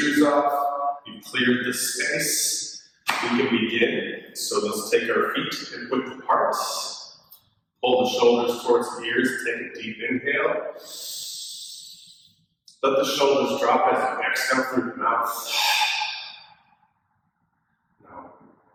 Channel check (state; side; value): identical; both; correlation 1.00